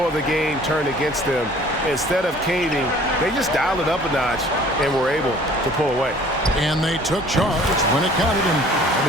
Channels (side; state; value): both; normal; correlation 0.52